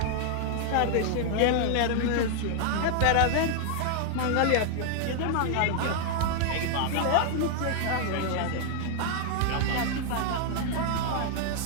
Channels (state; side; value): different; both; correlation 0.00